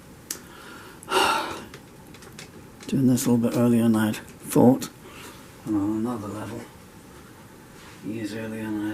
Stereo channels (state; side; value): identical; both; correlation 1.00